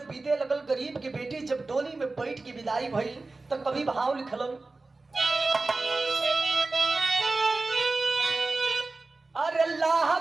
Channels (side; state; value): left; quieter; 3.4 dB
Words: बीते लगल, गरीब की बेटी जब डोली में बैठ के विदाई भई तो कभी भाव लिखलन, अरे